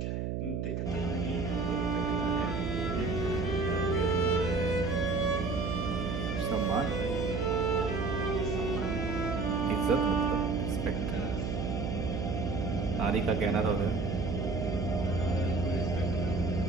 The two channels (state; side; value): noise; right; hum, 2 dB below the sound